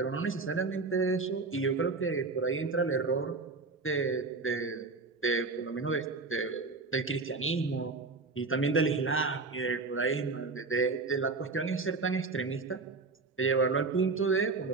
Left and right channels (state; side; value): quieter; left; 3.9 dB